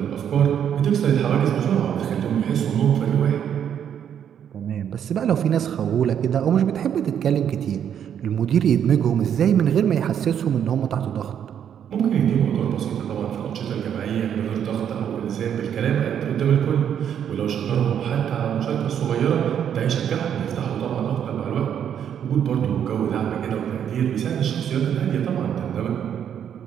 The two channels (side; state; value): left; quieter; 9.0 dB